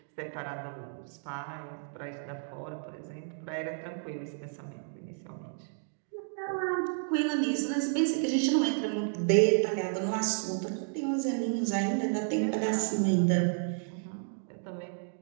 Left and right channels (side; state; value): left; silent; digital silence